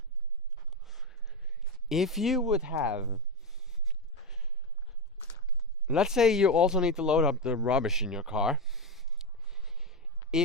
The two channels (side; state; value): both; normal; correlation 0.12